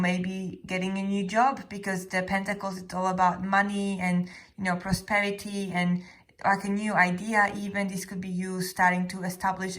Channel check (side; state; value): both; identical; correlation 1.00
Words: getting a new job, because the Pentacles, it's all about money and, you know, prosperity and like a new idea. Even this could be you starting to establish a